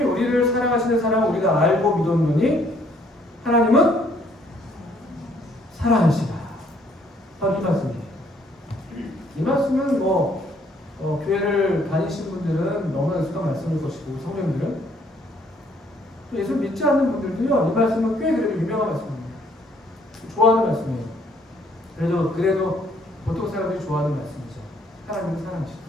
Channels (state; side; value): normal; both; correlation 0.65